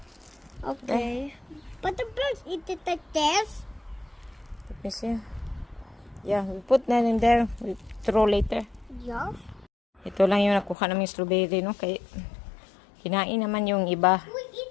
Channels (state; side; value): drops out; right; at 10.8 s